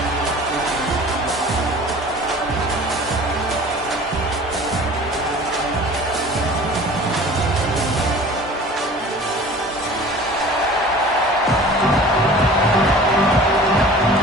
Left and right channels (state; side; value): normal; both; correlation 0.43